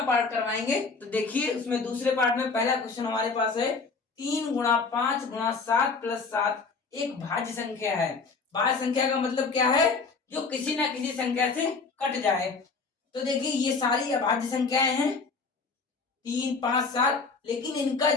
पार्ट करवाएंगे। तो देखिए उसमें दूसरे पार्ट में पहला क्वेश्चन हमारे पास है 3 × 5 × 7 + 7 एक भाज्य संख्या है। भाज्य संख्या का मतलब क्या है? जो किसी ना किसी संख्या से कट जाए। तो देखिए ये सारी अभाज्य संख्याएं हैं 3, 5, 7, लेकिन इनका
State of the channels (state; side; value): quieter; right; 4.5 dB